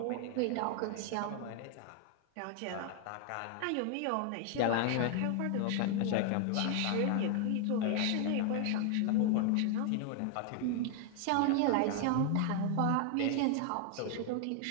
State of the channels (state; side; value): different; both; correlation 0.00